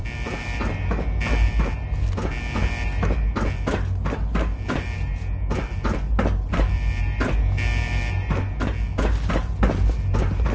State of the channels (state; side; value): identical; both; correlation 1.00